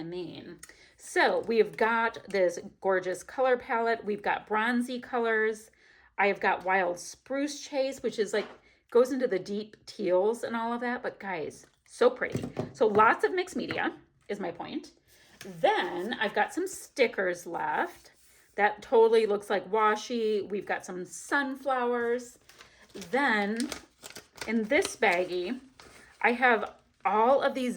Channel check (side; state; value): both; identical; correlation 1.00